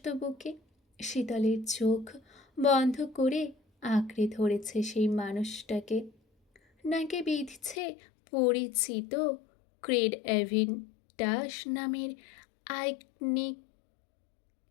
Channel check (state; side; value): drops out; right; at 7.8 s